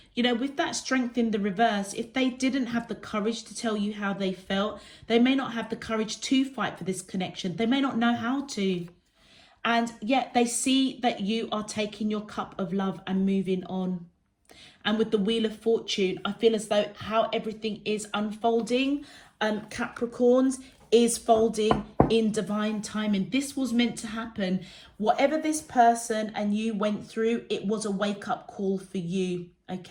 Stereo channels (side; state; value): both; identical; correlation 1.00